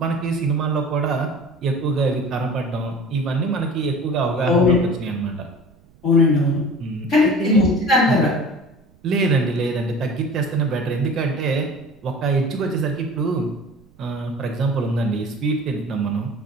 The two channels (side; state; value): right; noise; rumble, 29 dB below the sound